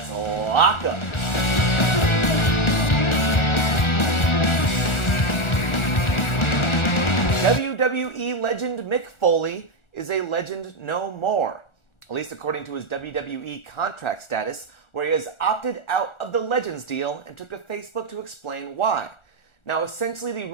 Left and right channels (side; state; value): right; late; 1.4 ms